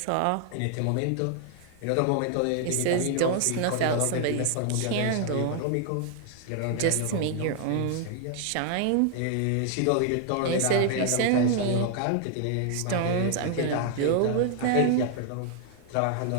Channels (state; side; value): different; both; correlation 0.00